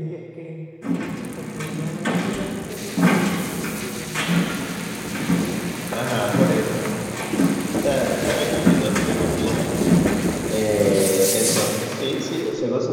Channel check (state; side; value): identical; both; correlation 1.00